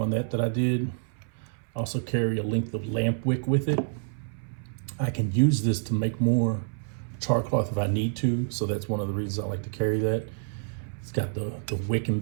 that I did. I also carry a length of lamp wick with it. I can use this to make more char cloth if I need to, so that's one of the reasons I like to carry that. It's got the wick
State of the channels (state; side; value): silent; left; 59 dB below the other